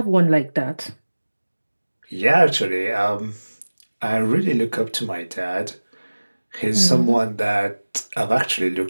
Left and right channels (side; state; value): both; inverted; correlation -1.00